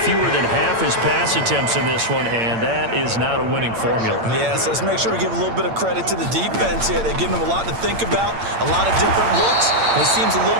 than half his pass attempts in this one, and that is not a winning formula. Yeah, so let's make sure we give a little bit of credit to the defense here. They've given him a lot to think about, a lot of different looks, and he seems a little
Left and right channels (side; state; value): left; late; 8.8 ms